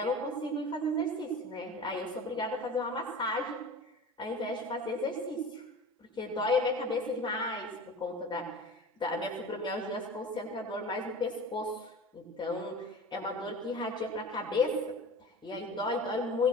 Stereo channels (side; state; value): both; normal; correlation 0.36